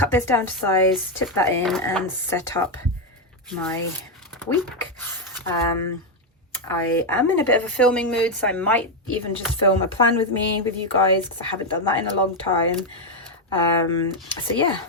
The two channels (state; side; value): normal; both; correlation 0.04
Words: this down to size, tip that in and set up my week. I am in a bit of a filming mood, so I might even just film a plan with me with you guys, because I haven't done that in a long time. So yeah,